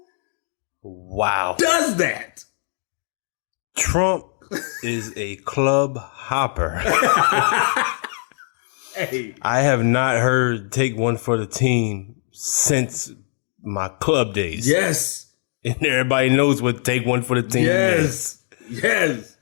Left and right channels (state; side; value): silent; right; digital silence